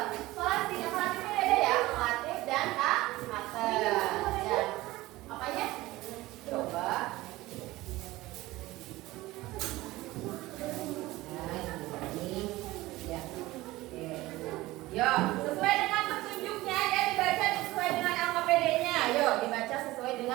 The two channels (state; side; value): quieter; left; 18.5 dB